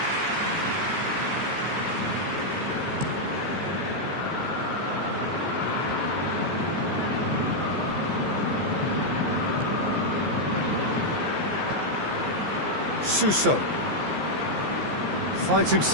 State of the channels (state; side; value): late; left; 15 ms